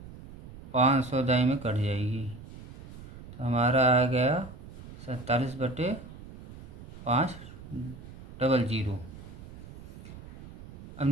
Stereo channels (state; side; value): noise; right; rumble, 16 dB below the sound